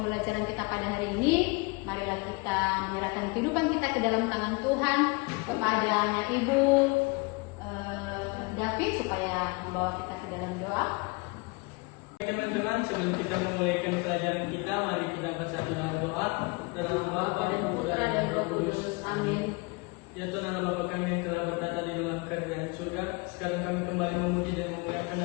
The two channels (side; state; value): right; quieter; 28.0 dB